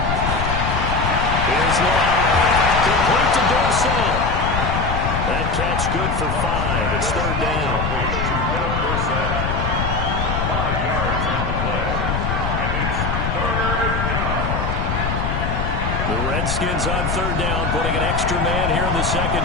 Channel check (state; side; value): noise; left; rumble, 1 dB below the sound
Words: Here's Lott. Complete to Dorsett. That catch good for 5. It's 3rd down. 5 yards on the play. And it's 3rd down. The Redskins on 3rd down, putting an extra man here in the